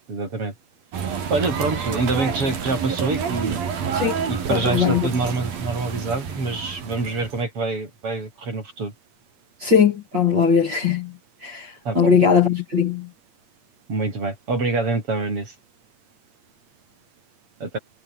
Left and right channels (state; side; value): late; left; 8.5 ms